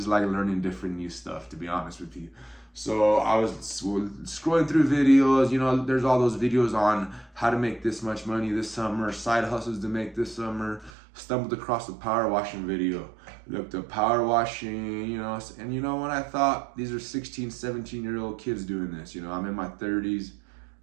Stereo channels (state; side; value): drops out; left; at 10.9 s